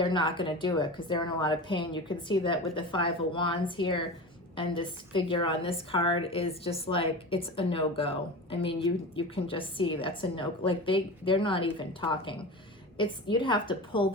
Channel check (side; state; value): both; normal; correlation 0.29